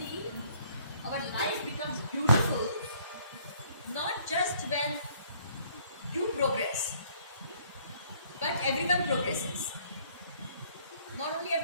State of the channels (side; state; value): both; inverted; correlation -0.62